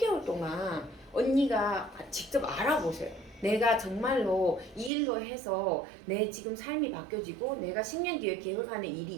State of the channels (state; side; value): drops out; left; at 4.9 s